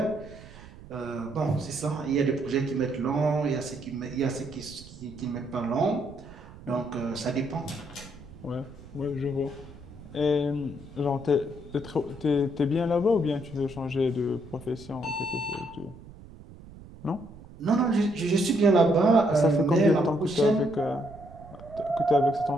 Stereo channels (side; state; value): right; noise; rumble, 18 dB below the sound